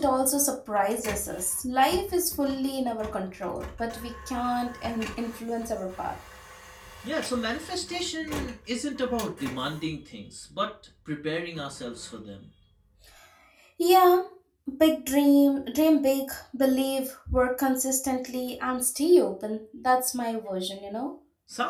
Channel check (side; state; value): both; identical; correlation 1.00